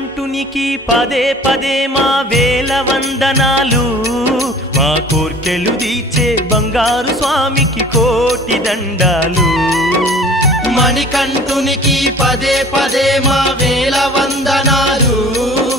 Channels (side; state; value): both; normal; correlation 0.47